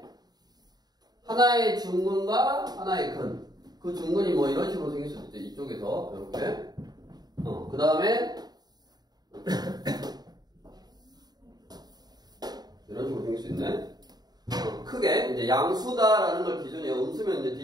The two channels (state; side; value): late; left; 0.20 ms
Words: 하나의 중근과 하나의 근. 그 중근이 뭐 이런 식으로 생길 수도 있죠. 이쪽에서 이렇게 그 다음에 이런 식으로 생길 수 있네. 크게 이제 양수다라는 걸 기준이에요. 음수면 이제